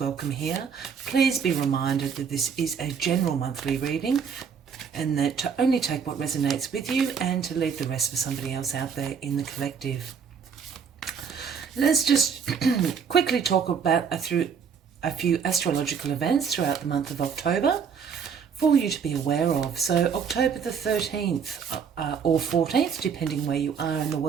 here. Please be reminded that this is a general monthly reading and that to only take what resonates with you and to leave the rest for somebody else out there in the collective. Let's just quickly talk about a few astrological events throughout the month of October for you to be aware of. So October the 13th or 14th, depending where you are in the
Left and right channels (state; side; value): quieter; left; 6.6 dB